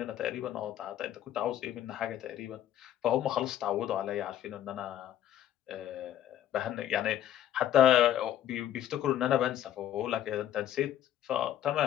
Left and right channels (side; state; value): right; quieter; 11.6 dB